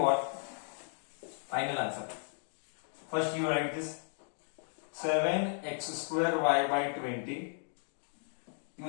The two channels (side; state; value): right; silent; 54 dB below the other